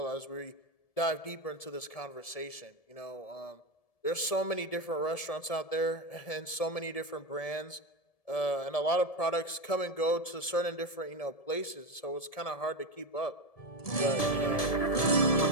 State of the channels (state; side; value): late; right; 1.7 ms